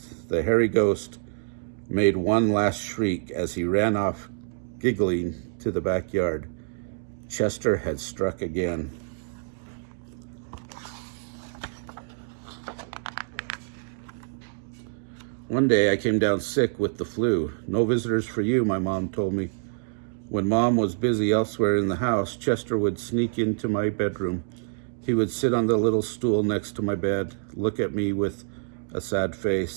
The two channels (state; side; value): silent; left; digital silence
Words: The hairy ghost made one last shriek as he ran off, giggling, to the backyard. Chester had struck again. One day I came down sick with the flu. "No visitors for you," my mom told me. When Mom was busy elsewhere in the house, Chester would sneak into my bedroom. He would sit on the little stool next to my bed, look at me with a sad